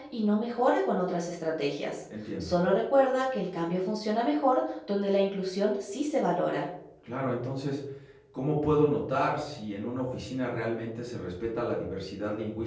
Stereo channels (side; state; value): both; identical; correlation 1.00